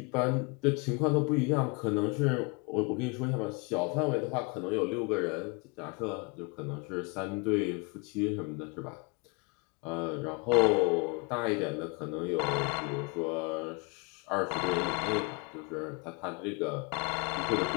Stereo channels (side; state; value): right; quieter; 30.8 dB